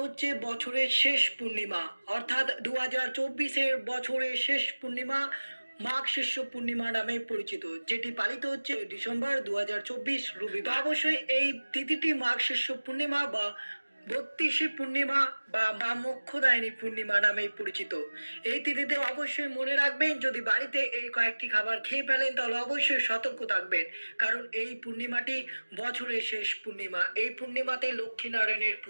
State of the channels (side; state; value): both; inverted; correlation -1.00